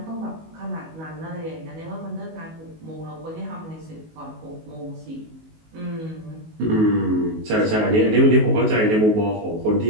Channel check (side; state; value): left; late; 19 ms